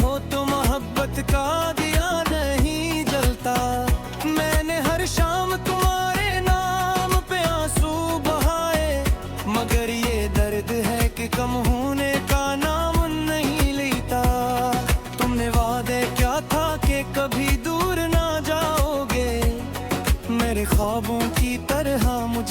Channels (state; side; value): identical; both; correlation 1.00